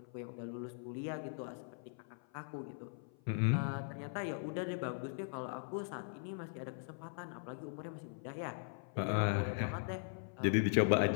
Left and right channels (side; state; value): right; silent; 51 dB below the other